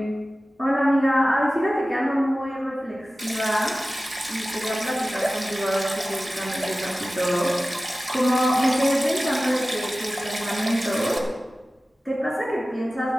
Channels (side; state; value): both; normal; correlation 0.96